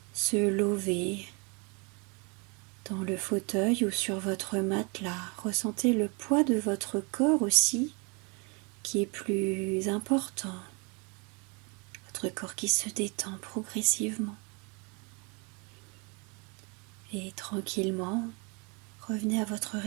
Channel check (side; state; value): left; quieter; 32.2 dB